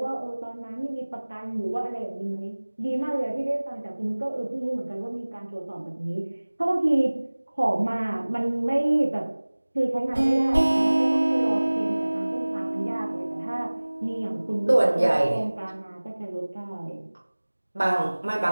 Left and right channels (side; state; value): both; inverted; correlation -1.00